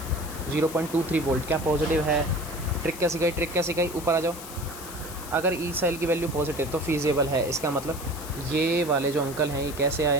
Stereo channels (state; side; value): noise; left; hiss, 13 dB below the sound